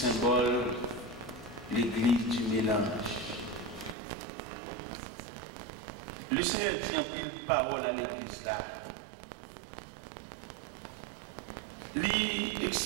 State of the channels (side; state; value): left; drops out; at 4.0 s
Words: l'église du mélange. Le Seigneur dit en pile parole à l'église là. Il